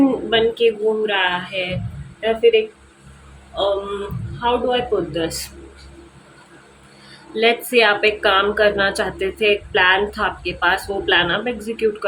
बन के घूम रहा है, या फिर एक how do I put this, let's say आप एक काम करना चाहते थे, एक प्लान था आपके पास, वो प्लान आप एग्जीक्यूट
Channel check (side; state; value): both; identical; correlation 1.00